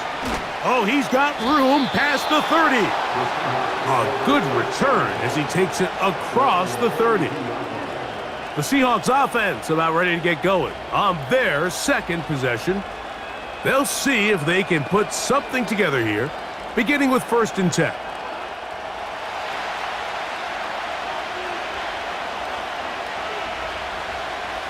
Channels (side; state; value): both; identical; correlation 1.00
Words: Oh, he's got room past the 30. A good return as he takes it across the 30. The Seahawks offense about ready to get going on their 2nd possession. They'll see if they can put something together here, beginning with 1st and 10.